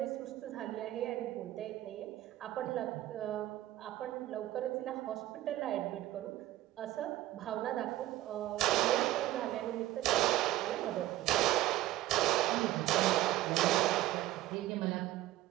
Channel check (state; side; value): quieter; left; 15.3 dB